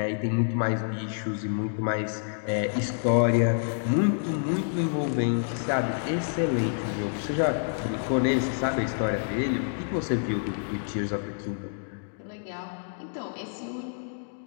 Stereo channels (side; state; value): right; silent; digital silence